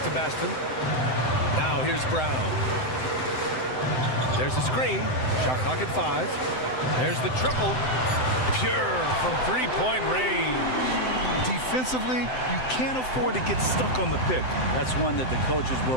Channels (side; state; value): right; late; 7.8 ms